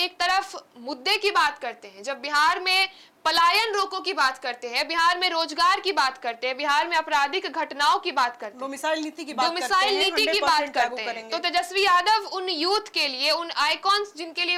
तरफ मुद्दे की बात करते हैं, जब बिहार में पलायन रोको की बात करते हैं, बिहार में रोजगार की बात करते हैं, बिहार में आपराधिक घटनाओं की बात करते हैं, डोमिसाइल नीति की बात करते हैं, तो तेजस्वी यादव उन यूथ के लिए, उन आइकॉन्स जिनके लिए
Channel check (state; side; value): identical; both; correlation 1.00